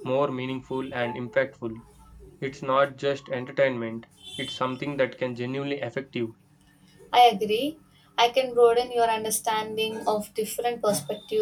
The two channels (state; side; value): identical; both; correlation 1.00